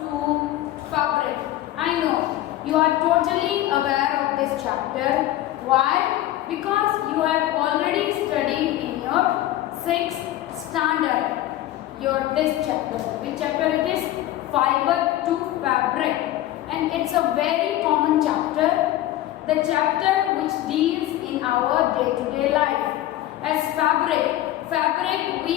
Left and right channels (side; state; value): right; quieter; 14.4 dB